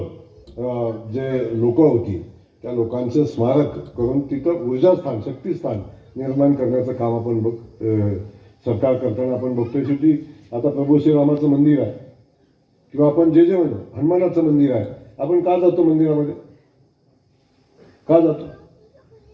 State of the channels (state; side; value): identical; both; correlation 1.00